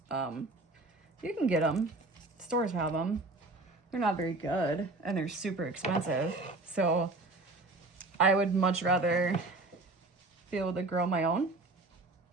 You can get them. Stores have them. They're not very good, and they're super expensive. So, I would much rather be able to grow my own.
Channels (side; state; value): left; quieter; 3.0 dB